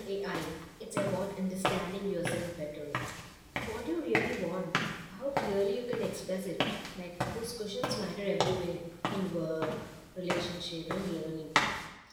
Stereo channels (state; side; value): identical; both; correlation 1.00